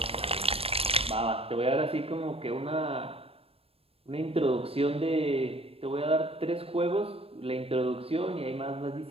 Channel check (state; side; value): late; left; 0.28 ms